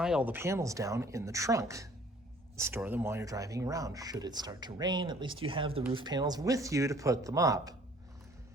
all the panels down in the trunk. Store them while you're driving around. Should it start to rain, at least you have the roof panels with you to put them up.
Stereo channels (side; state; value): both; normal; correlation 0.55